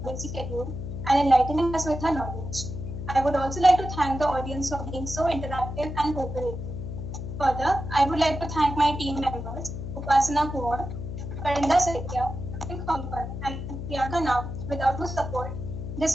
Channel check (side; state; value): left; noise; hum, 7 dB below the sound